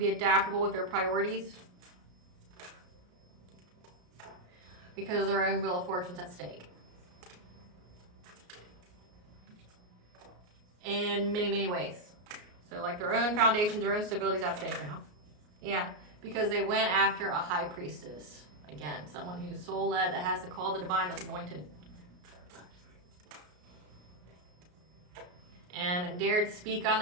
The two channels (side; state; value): left; late; 33 ms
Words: adaptable with their priorities, because their own wheel of fortune's at stake. In many, many ways. So like their own foundations, their own stability's at stake now. Yeah, because they went after a high priestess. Again, someone who's soul-led, that has the call of the divine, that's anointed. and dared speak on